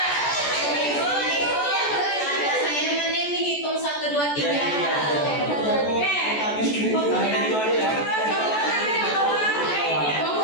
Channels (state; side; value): late; right; 14 ms